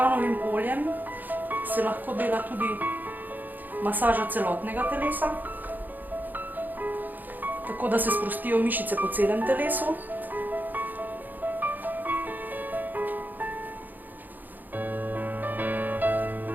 oljem se lahko dela tudi masaža celotnega telesa, tako da se sprostijo mišice po celem telesu.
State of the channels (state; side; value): late; left; 0.086 ms